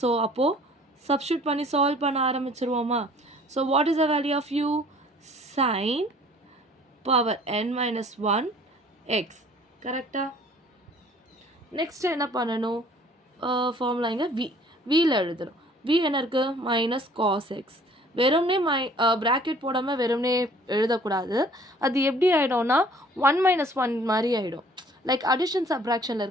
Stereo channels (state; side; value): normal; both; correlation 0.54